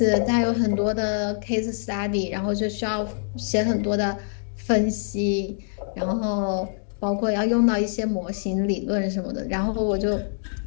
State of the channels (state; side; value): silent; right; digital silence